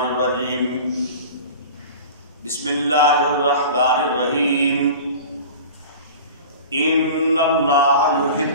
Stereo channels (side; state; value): both; inverted; correlation -0.37